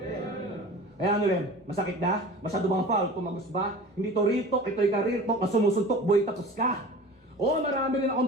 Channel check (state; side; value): normal; both; correlation 0.39